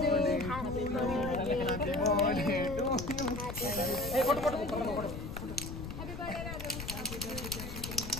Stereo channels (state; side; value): noise; left; rumble, 8 dB below the sound